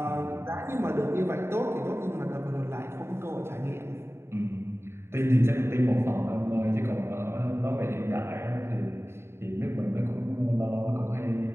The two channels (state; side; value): late; left; 0.12 ms